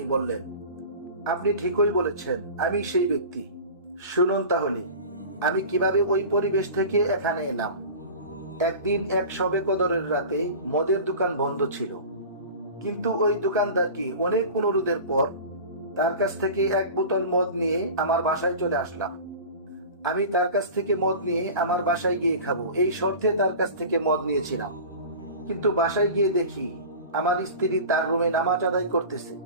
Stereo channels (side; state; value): both; inverted; correlation -0.35